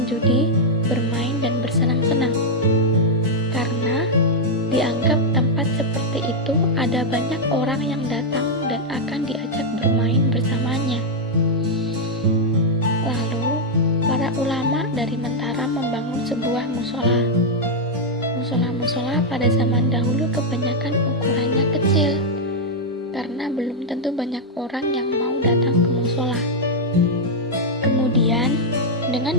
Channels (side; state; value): both; normal; correlation -0.03